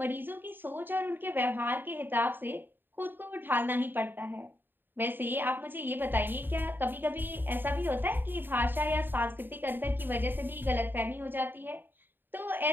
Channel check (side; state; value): left; late; 0.095 ms